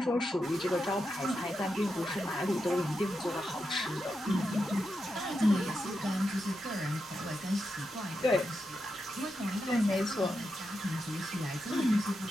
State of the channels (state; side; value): normal; both; correlation 0.87